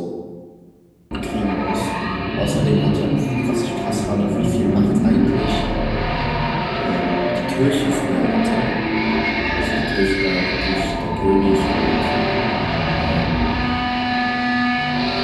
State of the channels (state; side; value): identical; both; correlation 1.00